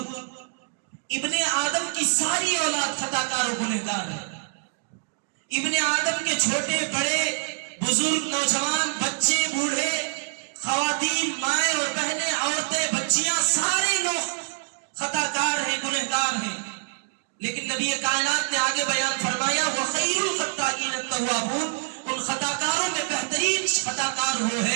ابن آدم کی ساری اولاد خطا کار و گنہگار ہے. ابن آدم کے چھوٹے بڑے، بزرگ، نوجوان، بچے، بوڑھے، خواتین، مائیں اور بہنیں، عورتیں، بچیاں، سارے لوگ خطا کار ہیں، گنہگار ہیں. لیکن نبی کائنات نے آگے بیان فرمایا وَخَيْرُ الْخَطَّائِينَ التَّوَّابُونَ، ان خطا کاروں میں بہترین خطا کار وہ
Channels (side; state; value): left; silent; 61 dB below the other